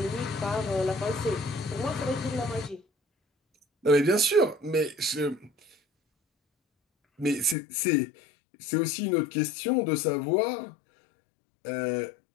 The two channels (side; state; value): right; drops out; at 7.6 s